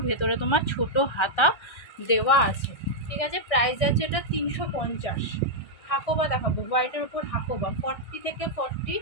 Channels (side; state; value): right; late; 1.6 ms